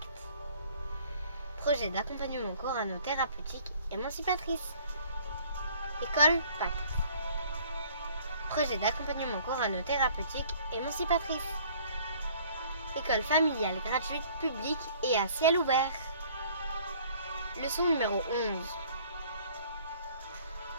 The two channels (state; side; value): inverted; both; correlation -0.55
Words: projet d'accompagnement coranothérapeutique émancipatrice. École Pacte, projet d'accompagnement coranothérapeutique émancipatrice. École familiale gratuite, publique et à ciel ouvert. Leçon numéro 11.